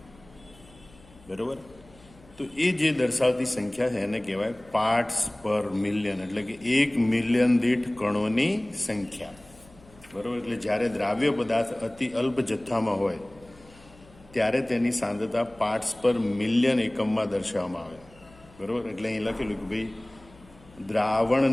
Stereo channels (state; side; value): noise; left; hum, 25 dB below the sound